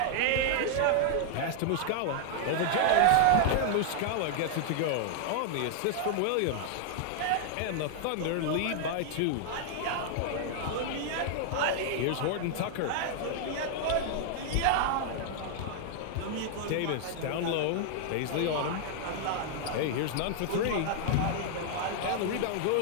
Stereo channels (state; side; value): different; both; correlation -0.01